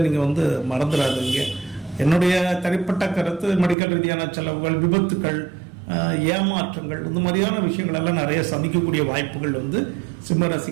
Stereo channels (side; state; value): left; drops out; at 3.8 s